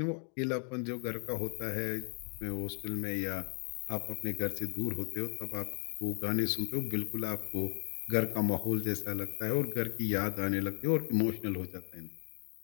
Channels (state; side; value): silent; right; 54 dB below the other